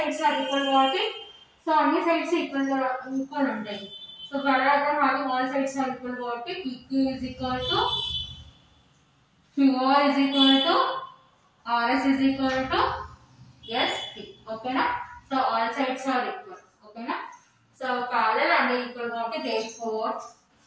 are equal కాబట్టి so అన్ని sides equal ఉంటాయి. So parallelogram having all sides are equal కాబట్టి PQ is equal to QR is equal to RS is equal to SP. Okay na? So all sides are equal. Okay na? So parallel and equal కాబట్టి therefore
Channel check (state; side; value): identical; both; correlation 1.00